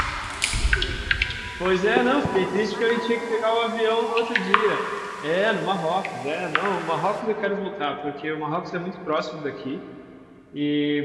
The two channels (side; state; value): both; identical; correlation 1.00